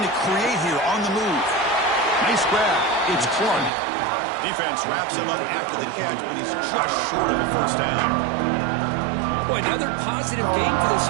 to create here on the move. Nice grab. It's Clark. Defense wraps him up after the catch, but he's just short of a 1st down. Boy, another positive game for this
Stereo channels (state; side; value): drops out; left; at 3.7 s